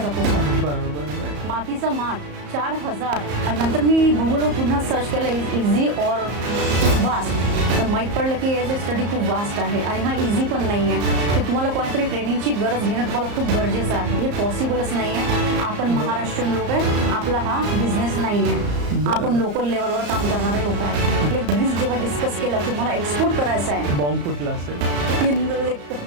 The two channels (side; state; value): left; late; 34 ms